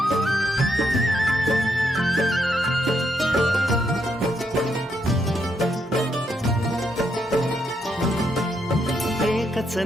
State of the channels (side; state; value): both; normal; correlation 0.77